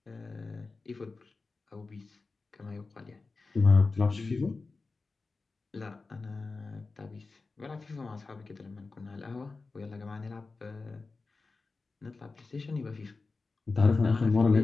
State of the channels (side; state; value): right; quieter; 3.9 dB